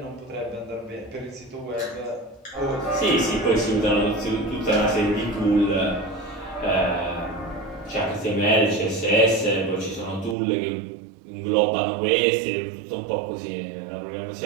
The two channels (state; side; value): drops out; left; at 10.4 s